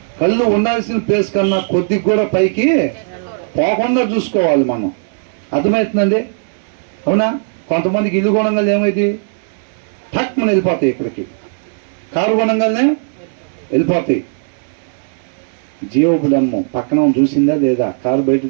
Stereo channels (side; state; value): left; silent; digital silence